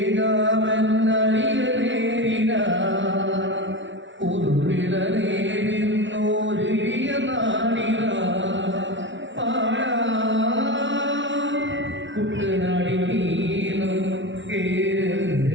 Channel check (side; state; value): left; late; 0.55 ms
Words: നേരിന ഉരുവിള നേരിന്നോരിയ നാടിന പാടാ കുട്ടനാടി നീളം